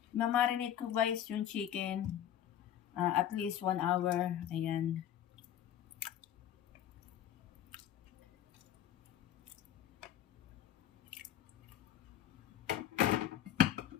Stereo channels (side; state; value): right; quieter; 10.8 dB